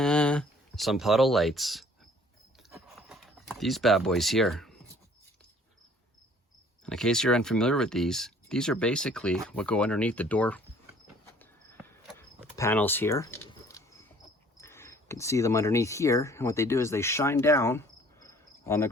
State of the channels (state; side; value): normal; both; correlation 0.55